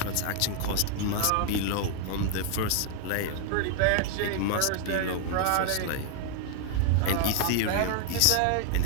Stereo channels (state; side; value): different; both; correlation 0.00